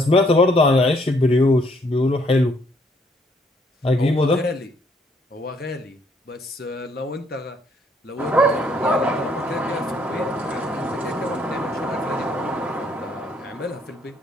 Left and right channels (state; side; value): normal; both; correlation 0.67